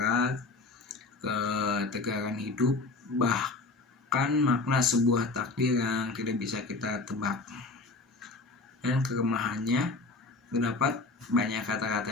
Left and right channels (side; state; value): right; quieter; 3.6 dB